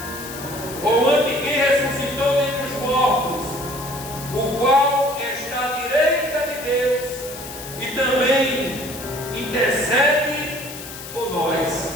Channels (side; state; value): left; noise; hiss, 12 dB below the sound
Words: ou ante quem ressuscitou dentre os mortos, o qual está à direita de Deus e também intercede por